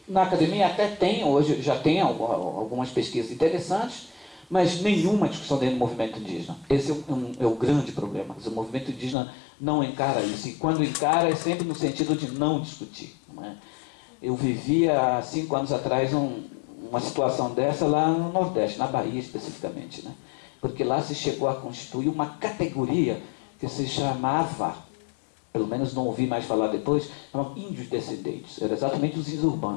na academia até tem, hoje já tem algumas pesquisas interessantes, mas nenhuma discussão dentro do movimento indígena. Esse é o grande problema. O movimento indígena não encara isso, e quando encara é sempre no sentido de não discutir. Não é? Eu vivia há 5 anos atrás uma situação dessa lá no Nordeste, na Bahia especificamente, né? Porque lá se chegou a constituir uma categoria que se chamava, pelo menos não ouvi mais falar depois, chamava índios descendentes. Era exatamente os índios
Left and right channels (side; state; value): right; drops out; at 9.2 s